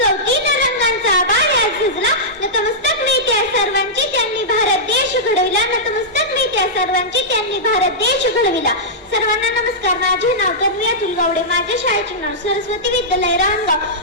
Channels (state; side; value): normal; both; correlation -0.12